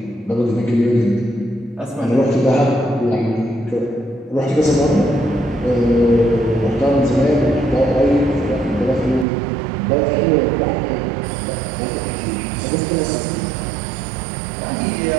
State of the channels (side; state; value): left; drops out; at 9.2 s